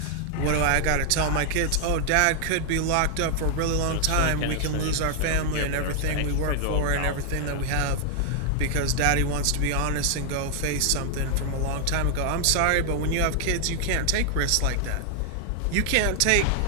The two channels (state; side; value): different; both; correlation 0.00